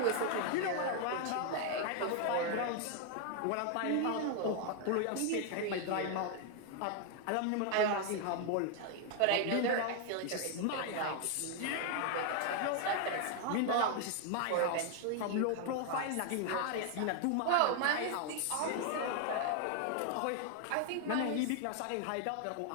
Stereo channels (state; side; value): different; both; correlation 0.00